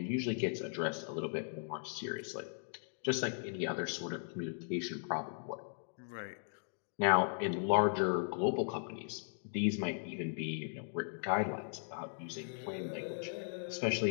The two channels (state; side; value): silent; right; digital silence